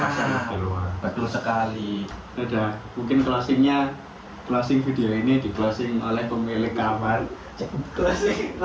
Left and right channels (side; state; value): both; identical; correlation 1.00